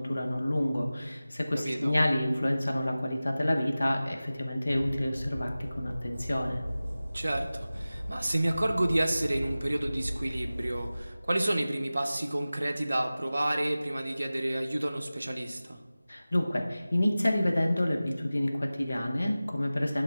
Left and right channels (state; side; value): inverted; both; correlation -0.97